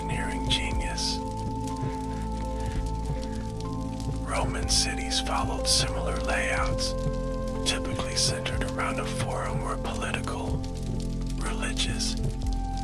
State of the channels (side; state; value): both; identical; correlation 1.00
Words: genius. Roman cities followed similar layouts, typically centered around a forum where political, religious,